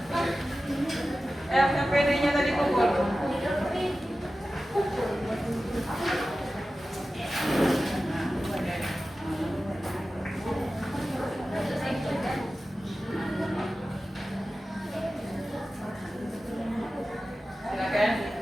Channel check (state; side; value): normal; both; correlation 0.94